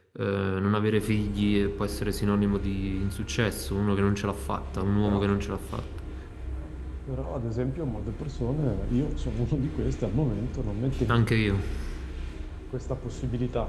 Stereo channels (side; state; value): both; identical; correlation 1.00